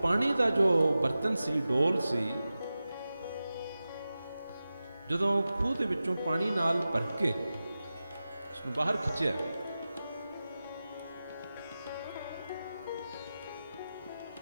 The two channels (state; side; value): inverted; both; correlation -0.94